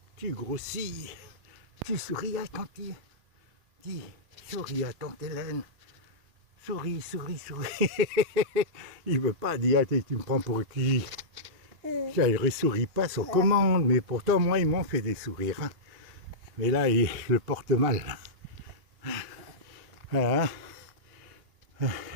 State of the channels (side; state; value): left; late; 2.9 ms